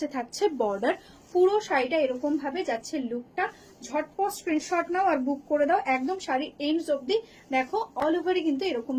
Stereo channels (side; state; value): both; identical; correlation 1.00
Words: থাকছে বর্ডার। পুরো শাড়িটা এরকম ভাবে যাচ্ছে লুকটা। ঝটপট স্ক্রিনশট নাও আর বুক করে দাও, একদম শাড়ি এন্ডস অব্দি দেখো অল ওভারই কিন্তু এরকম